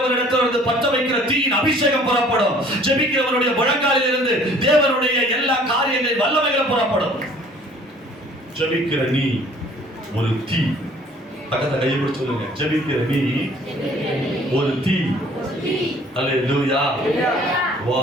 பற்ற வைக்கிற தீயின் அபிஷேகம் புறப்படும். ஜெபிக்கிறவனுடைய முழங்காலில் இருந்து தேவனுடைய எல்லா காரியங்களின் வல்லமைகள் புறப்படும். ஜெபிக்கிற நீ ஒரு தீ. பக்கத்துல கையை பிடிச்சு சொல்லுங்க, ஜெபிக்கிற நீ ஒரு தீ. அல்லேலூயா.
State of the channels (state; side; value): normal; both; correlation 0.54